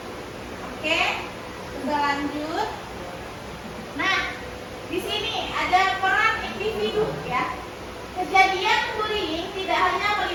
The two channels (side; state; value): both; identical; correlation 1.00